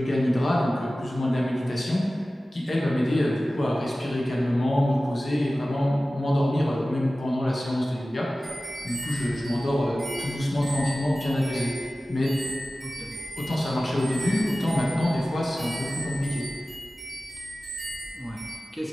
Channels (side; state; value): both; normal; correlation 0.96